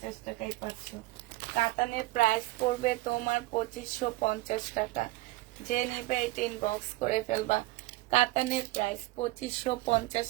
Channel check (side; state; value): left; quieter; 20.1 dB